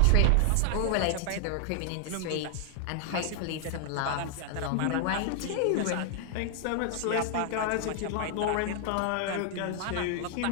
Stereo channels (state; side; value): different; both; correlation 0.00